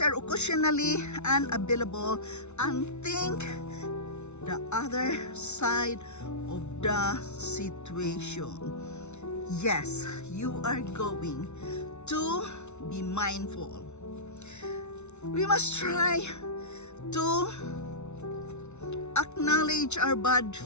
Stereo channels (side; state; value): right; late; 0.82 ms